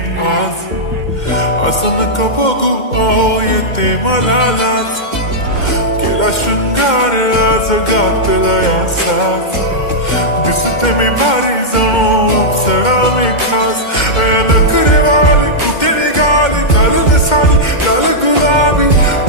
आज, असं नका बघू अहो येते मला लाज, केला शृंगार आज घातला साज, दिसते मी भारी जणू अप्सरा मी खास, नखरेवाली कुठे निघाली घालून साडी लाल गुलाबी,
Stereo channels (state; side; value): late; right; 2.1 ms